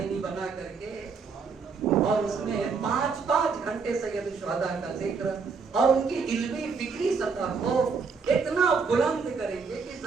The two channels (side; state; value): left; quieter; 5.1 dB